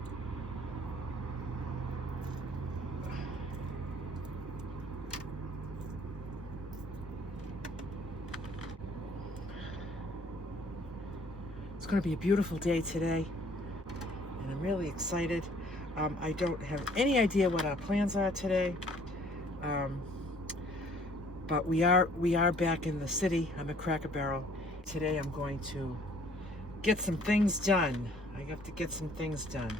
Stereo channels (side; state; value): both; normal; correlation 0.58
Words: It's going to be a beautiful day today. And I'm really excited. I don't have any idea what our plans are today, but we are back in the city. I'm at Cracker Barrel. Today I'm going to get some things done. I have to get some things done